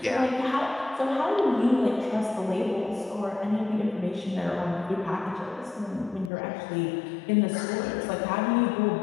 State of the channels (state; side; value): drops out; right; at 6.3 s